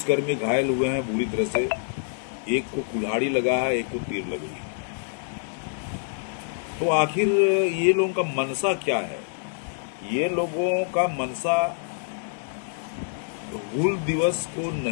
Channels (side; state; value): right; silent; digital silence